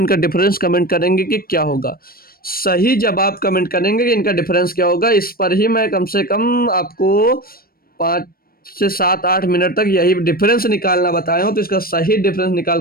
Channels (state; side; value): late; right; 0.43 ms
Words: डिफरेंस कमेंट करेंगे कि क्या होगा। सही जवाब कमेंट करेंगे कि इनका डिफरेंस क्या होगा। इस पर ही मैं कम से कम आपको 5 से 7 8 मिनट तक यही डिफरेंस निकालना बताया हूँ, तो इसका सही डिफरेंस